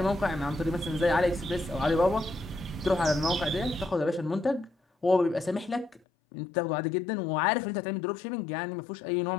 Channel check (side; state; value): right; drops out; at 6.0 s